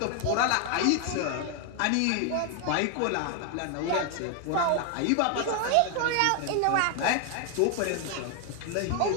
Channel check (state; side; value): different; both; correlation 0.00